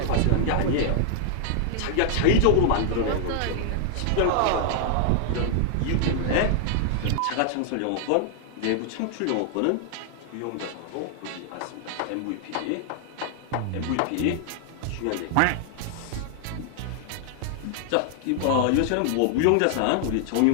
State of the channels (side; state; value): both; different; correlation 0.00